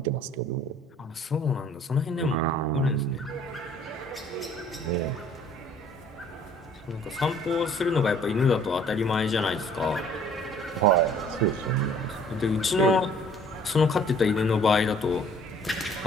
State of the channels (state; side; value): normal; both; correlation 0.55